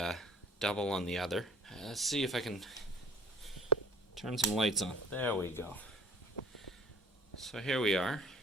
double on the other. Let's see if I can turn some lights on. There we go. So here we are.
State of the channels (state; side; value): normal; both; correlation 0.47